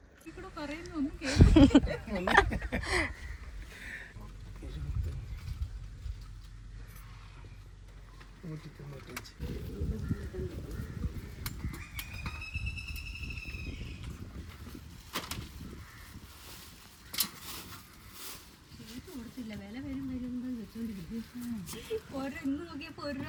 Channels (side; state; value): both; identical; correlation 1.00